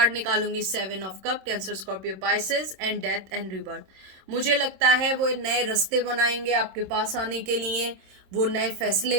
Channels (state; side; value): late; left; 26 ms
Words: निकालूंगी, 7 of cup, Cancer Scorpio Pisces and death and rebirth. मुझे लगता है वो नए रास्ते बनाएंगे आपके पास आने के लिए, वो नए